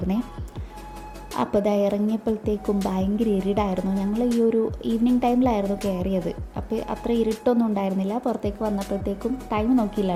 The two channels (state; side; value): identical; both; correlation 1.00